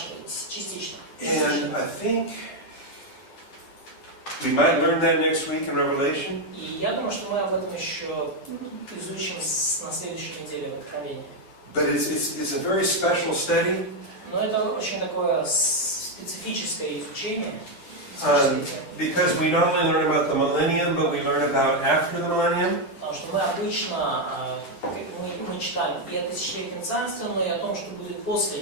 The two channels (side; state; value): right; late; 10 ms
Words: частично. And I think we might learn that next week in Revelation. И я думаю, что мы об этом еще изучим на следующей неделе в Откровении. But it's a very special study. Но это очень такое специфическое изучение. Because we not only learn about the millennium, but we learn about after the millennium. Потому что мы обычно мы читаем и о тысячелетнем царстве, но и о том, что будет после